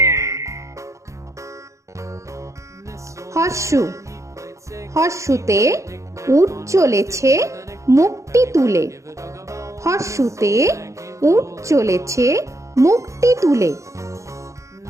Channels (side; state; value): left; late; 0.15 ms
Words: হর্ষু হর্ষুতে উট চলেছে মুখটি তুলে। হর্ষুতে উট চলেছে মুখটি তুলে।